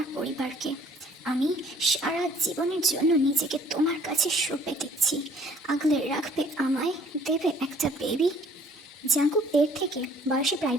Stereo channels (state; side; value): normal; both; correlation 0.57